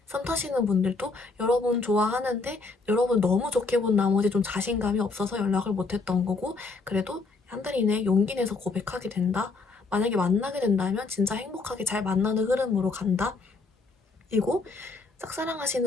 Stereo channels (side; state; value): right; quieter; 3.9 dB